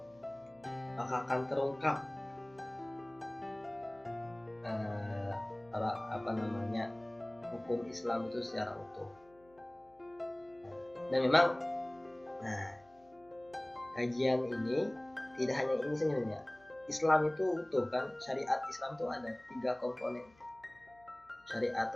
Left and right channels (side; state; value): left; noise; hum, 30 dB below the sound